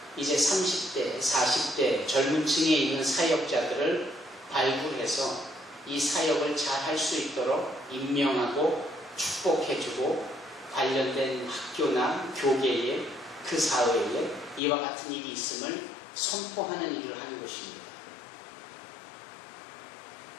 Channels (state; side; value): drops out; right; at 14.6 s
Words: 이제 30대, 40대 젊은 층에 있는 사역자들을 발굴해서 이 사역을 잘 할 수 있도록 임명하고 축복해주고 관련된 학교나 교계에 그 사회에 이와 같은 일이 있음을 선포하는 일을 하는 것입니다.